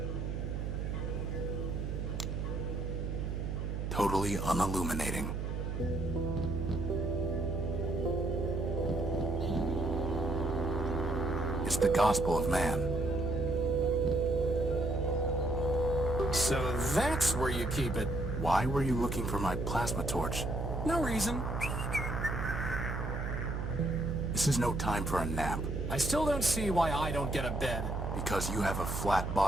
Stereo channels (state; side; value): noise; right; hum, 2 dB below the sound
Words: Totally unilluminating. It's the gospel of man. So that's where you keep it. Why were you looking for my plasma torch? No reason. This is no time for a nap. I still don't see why I don't get a bed. Because you have a flat